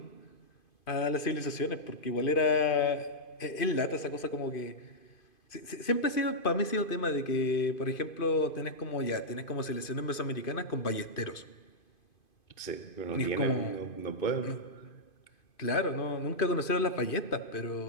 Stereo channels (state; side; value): late; right; 2.5 ms